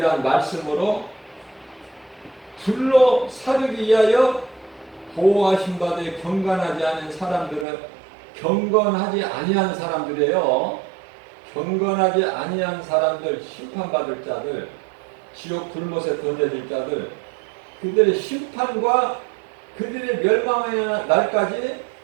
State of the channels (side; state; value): left; drops out; at 7.7 s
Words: 말씀으로 불로 사르기 위하여 보호하신 바되 경건하지 않은 사람들은 경건하지 아니한 사람들이에요. 경건하지 아니한 사람들, 심판받을 자들, 지옥 불못에 던져질 자들, 그들의 심판과 그들의 멸망의 날까지